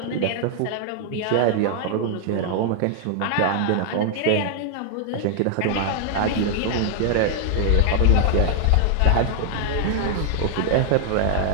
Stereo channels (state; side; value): different; both; correlation 0.00